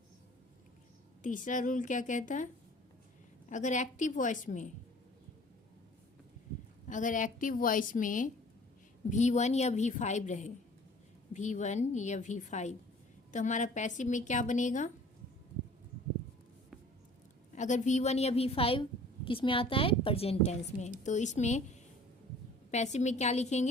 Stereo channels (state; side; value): normal; both; correlation 0.49